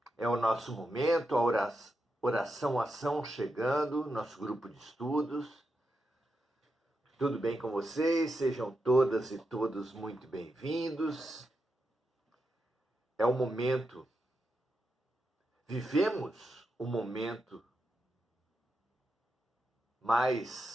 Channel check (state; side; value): normal; both; correlation 0.86